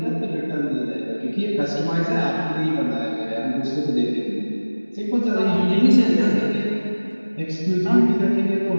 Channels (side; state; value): both; inverted; correlation -1.00